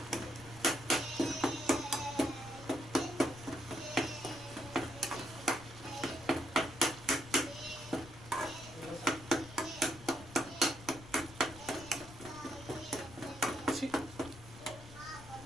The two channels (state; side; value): noise; left; rumble, 16 dB below the sound